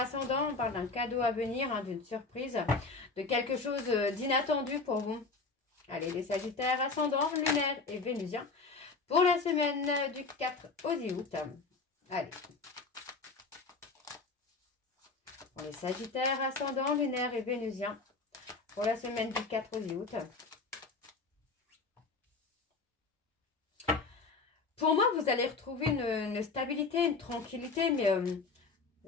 on parle d'un cadeau à venir, d'une surprise, de quelque chose d'inattendu pour vous. Allez, les Sagittaires ascendants, lunaire et vénusien, pour la semaine du 4 au 10 août. Allez. Pour les Sagittaires, ascendant, lunaire et vénusien. Pour la semaine du 4 au 10 août. Pour moi, vous allez retrouver une stabilité, une tranquillité, mais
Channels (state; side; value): quieter; right; 4.0 dB